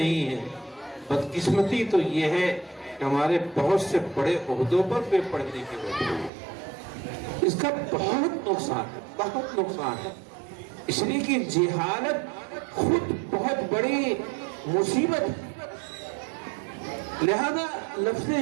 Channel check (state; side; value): drops out; left; at 6.3 s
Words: ہیں، بدقسمتی تو یہ ہے کہ ہمارے بہت سے بڑے عہدوں پر بے پڑھنے کی وجہ ہے۔ اس کا بہت نقصان ہے، بہت نقصان ہے، اس لیے کہ جہالت خود بہت بڑی مصیبت ہے۔ لہذا لفظ